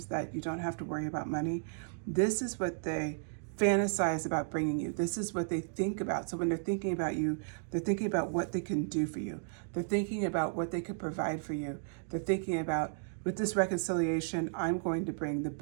that you don't have to worry about money. This is what they fantasize about bringing you. This is what they think about. So when they're thinking about you, they're thinking about what they can do for you. They're thinking about what they could provide for you. They're thinking about, with this reconciliation, I'm going to bring the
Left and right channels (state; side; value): silent; left; digital silence